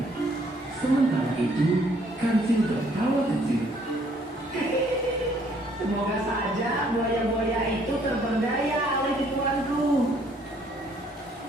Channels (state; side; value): normal; both; correlation 0.64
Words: Sementara itu, Kancil tertawa kecil. Semoga saja buaya-buaya itu terperdaya oleh tipuanku.